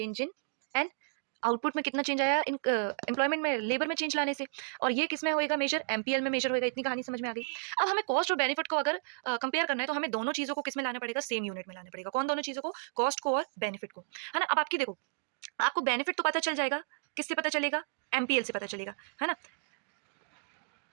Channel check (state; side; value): silent; left; digital silence